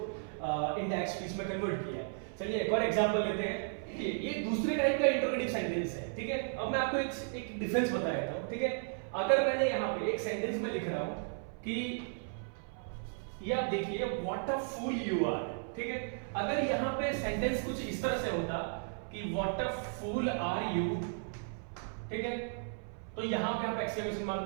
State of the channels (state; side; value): silent; left; 55 dB below the other